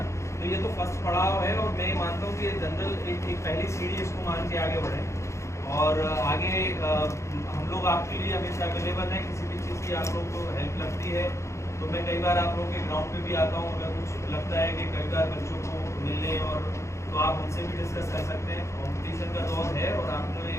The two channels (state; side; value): late; right; 0.14 ms